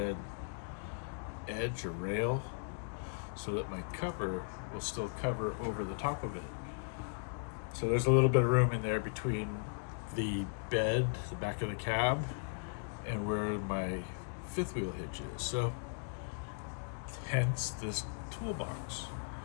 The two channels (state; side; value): silent; right; digital silence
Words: edge or rail, so that my cover will still cover over the top of it. So there's a little bit of room in there between the bed, the back of the cab, and where my fifth wheel hitch is. So hence this toolbox.